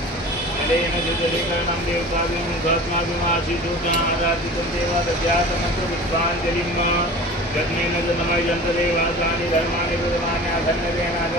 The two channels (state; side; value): normal; both; correlation 0.39